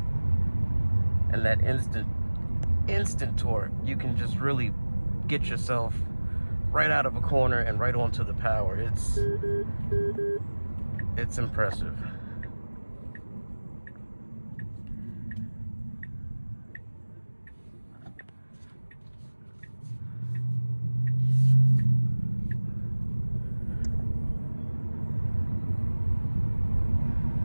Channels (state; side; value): inverted; both; correlation -1.00